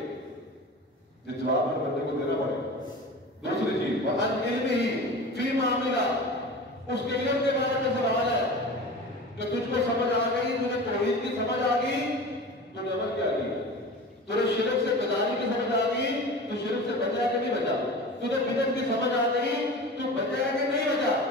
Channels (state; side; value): normal; both; correlation 0.34